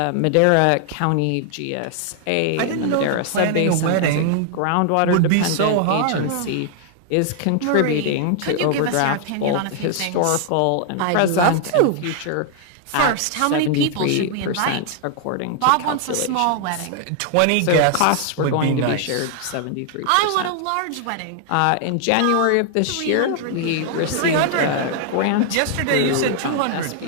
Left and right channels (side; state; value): both; different; correlation 0.00